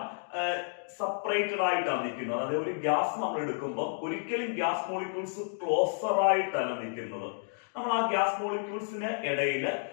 സെപ്പറേറ്റഡ് ആയിട്ടാണ് നിൽക്കുന്നത്. അതായത് ഒരു ഗ്യാസ് നമ്മൾ എടുക്കുമ്പോൾ ഒരിക്കലും ഗ്യാസ് മോളിക്യൂൾസ് ക്ലോസർ ആയിട്ടല്ല നിൽക്കുന്നത്. നമ്മൾ ആ ഗ്യാസ് മോളിക്യൂൾസിന് ഇടയിൽ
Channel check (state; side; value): silent; right; digital silence